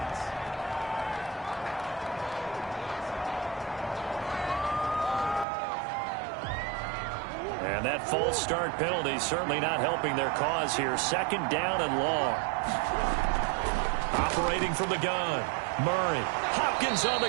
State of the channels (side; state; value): left; drops out; at 5.5 s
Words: And that false start penalty certainly not helping their cause here. 2nd down and long. Operating from the gun. Murray. Hopkins on the